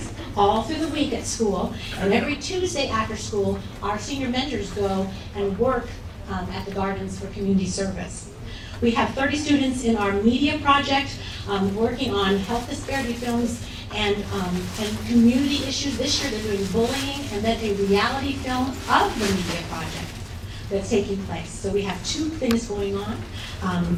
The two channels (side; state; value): both; identical; correlation 1.00